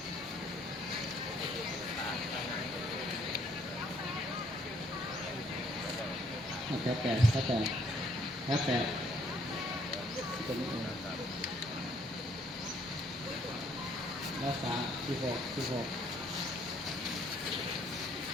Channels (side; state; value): both; normal; correlation 0.65